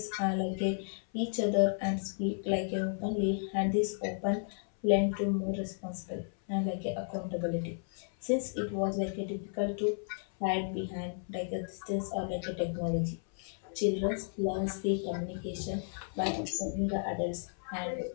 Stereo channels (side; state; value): right; silent; 55 dB below the other